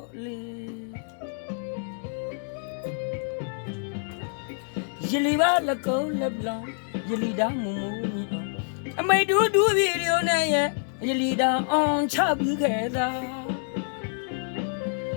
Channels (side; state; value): right; silent; 60 dB below the other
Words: လေရလီပါလကုံးလက်ပလောင်ရလီတာမုံမူမီအောင်အမိတ်တူတူဗီဒီယိုနဲ့ရဲ့ရလီတာအောင်ချပြီးခဲ့တာ